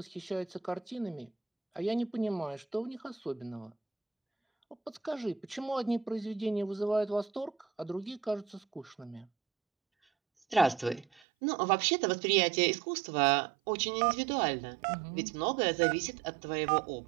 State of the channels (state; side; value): drops out; left; at 11.2 s